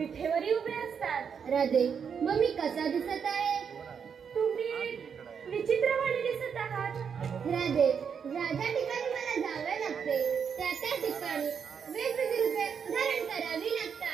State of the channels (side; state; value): left; quieter; 6.9 dB